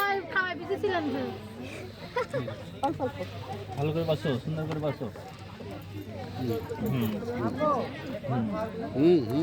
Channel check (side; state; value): both; identical; correlation 1.00